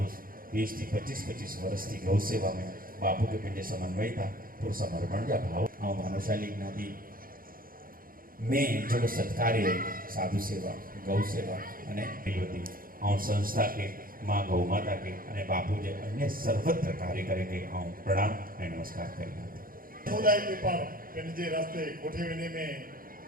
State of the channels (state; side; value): late; left; 0.41 ms